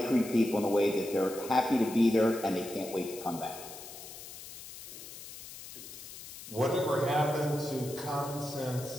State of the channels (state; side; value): noise; left; hiss, 13 dB below the sound